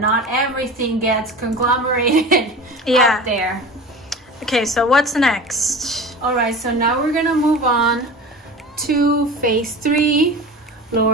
everything gets conglomerated out there. Okay, so what's next? All right, so now we're gonna move on to phase 3,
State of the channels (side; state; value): both; normal; correlation 0.34